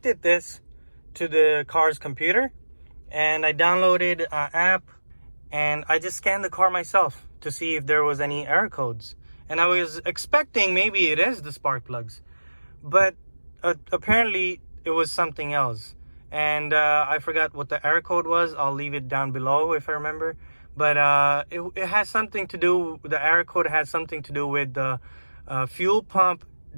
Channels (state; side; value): inverted; both; correlation -1.00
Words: this to the car's computer, and I downloaded an app, and I just scanned the car myself to see if there was any error codes. And I was expecting maybe it is the spark plugs, but apparently it was something else. And I forgot what the error code was. I'll leave it down below if I remember. But it has something to do, the error code has something to do with the fuel pump